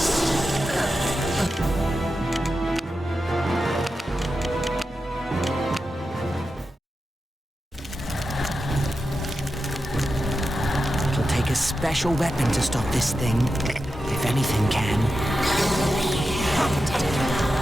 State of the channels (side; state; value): both; normal; correlation 0.90